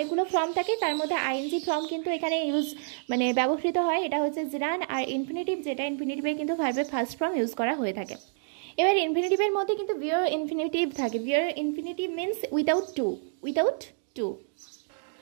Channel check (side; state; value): left; silent; digital silence